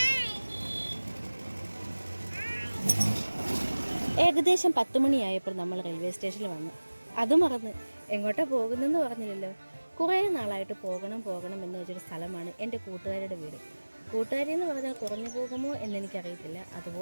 ഏകദേശം 10 മണിയായപ്പോൾ നമ്മൾ റെയിൽവേ സ്റ്റേഷനിൽ വന്നു. അത് മറന്ന് എങ്ങോട്ടാ പോകുന്നതെന്ന് പറഞ്ഞില്ലല്ലോ. കുറേ നാളായിട്ട് പോകണം എന്ന് വെച്ചൊരു സ്ഥലമാണ് എൻ്റെ കൂട്ടുകാരുടെ വീട്. കൂട്ടുകാരി എന്ന് പറഞ്ഞാൽ കുറഞ്ഞു പോകുമോ എന്നെനിക്കറിയത്തില്ല.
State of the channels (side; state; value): both; inverted; correlation -1.00